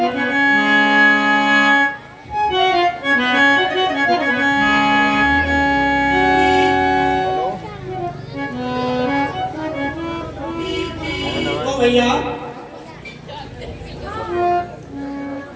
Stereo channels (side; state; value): both; identical; correlation 1.00